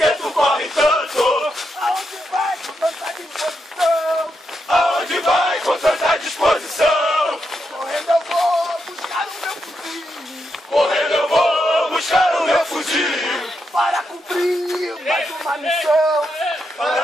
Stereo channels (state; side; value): normal; both; correlation 0.83